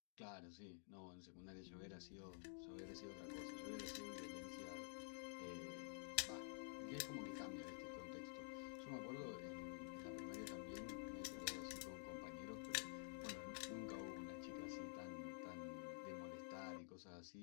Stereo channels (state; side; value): silent; right; digital silence